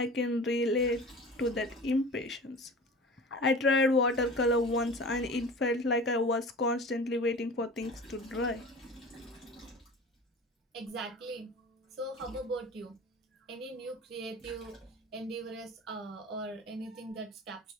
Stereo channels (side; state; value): both; normal; correlation 0.38